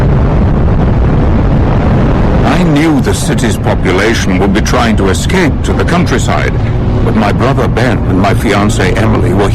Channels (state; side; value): identical; both; correlation 1.00